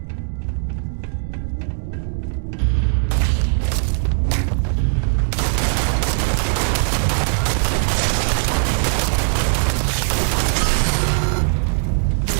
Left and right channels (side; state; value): left; silent; 66 dB below the other